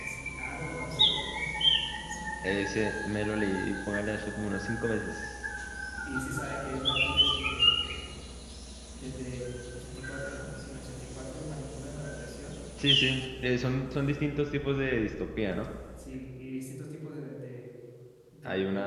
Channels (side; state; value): both; identical; correlation 1.00